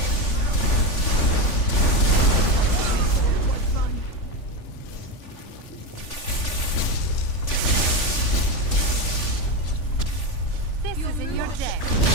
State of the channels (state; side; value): late; right; 3.5 ms